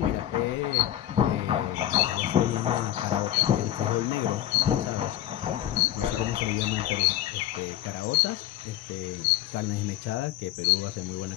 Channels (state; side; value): quieter; right; 12.8 dB